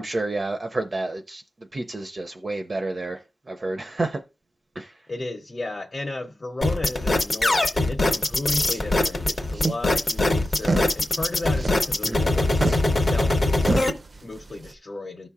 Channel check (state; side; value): normal; both; correlation 0.92